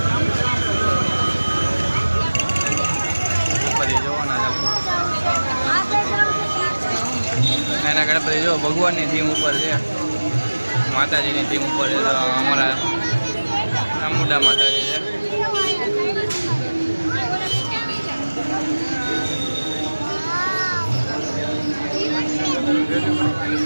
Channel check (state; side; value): inverted; both; correlation -1.00